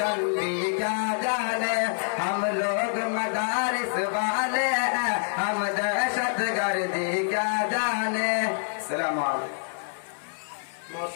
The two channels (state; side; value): silent; right; digital silence